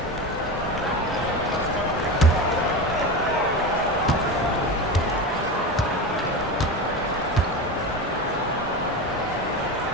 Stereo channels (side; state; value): both; normal; correlation 0.24